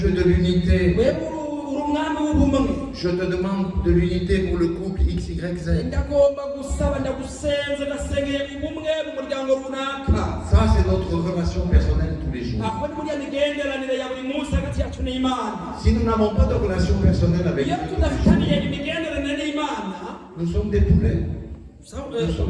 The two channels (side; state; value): both; identical; correlation 1.00